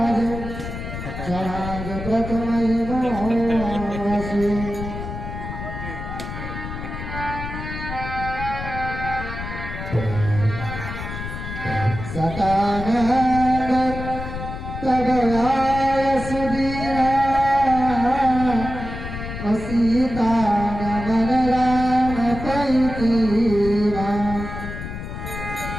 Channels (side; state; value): left; noise; rumble, 8 dB below the sound